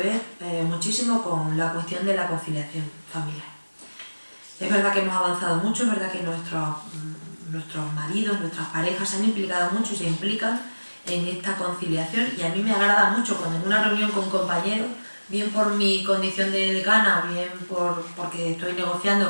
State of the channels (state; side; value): inverted; both; correlation -1.00